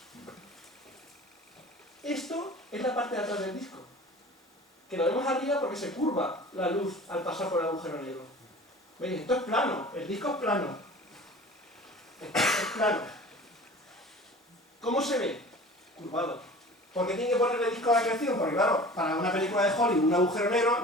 Esto es la parte de atrás del disco, que lo vemos arriba porque se curva la luz al pasar por el agujero negro. ¿Veis? Esto es plano, el disco es plano. Esto es plano. ¿Cómo se ve? Curvado. ¿Por qué tiene que ponerle disco de acreción? Porque claro, para una película de Hollywood, un agujero negro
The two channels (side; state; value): both; normal; correlation 0.41